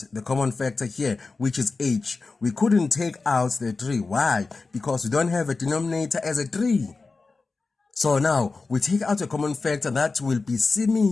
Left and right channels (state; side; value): quieter; right; 4.0 dB